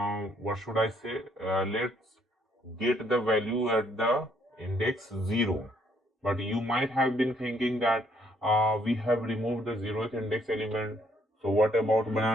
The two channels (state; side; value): normal; both; correlation 0.68